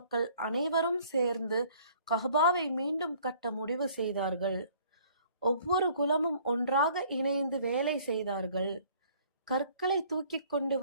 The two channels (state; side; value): inverted; both; correlation -0.56